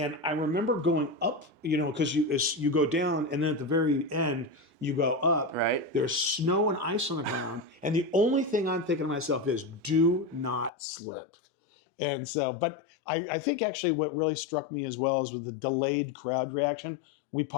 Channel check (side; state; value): right; drops out; at 10.7 s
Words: I remember going up, because you go down, and then at the very end you go up. Right. There's snow and ice on the ground, and the only thing I'm thinking to myself is, do not slip. And so, but I think actually what really struck me as well is with the delayed crowd reaction. We